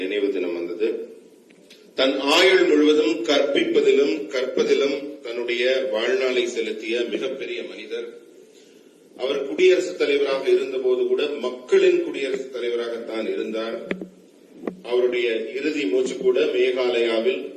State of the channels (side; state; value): both; identical; correlation 1.00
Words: நினைவு தினம் வந்தது. தன் ஆயுள் முழுவதும் கற்பிப்பதிலும் கற்பதிலும் தன்னுடைய வாழ்நாளை செலுத்திய மிகப்பெரிய மனிதர். அவர் குடியரசுத் தலைவராக இருந்தபோது கூட மக்களின் குடியரசுத் தலைவராகத்தான் இருந்தார். அவருடைய இறுதி மூச்சு கூட மேகாலயாவில்